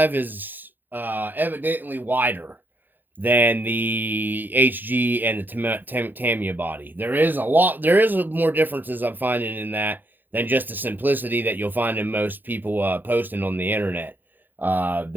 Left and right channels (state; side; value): late; left; 0.089 ms